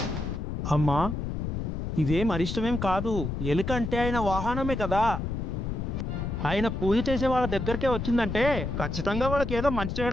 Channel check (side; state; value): left; noise; rumble, 3 dB below the sound